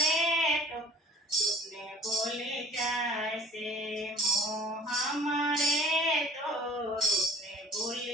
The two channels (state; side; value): normal; both; correlation 0.49